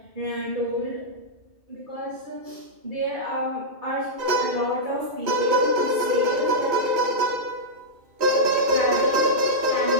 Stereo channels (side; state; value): left; late; 2.6 ms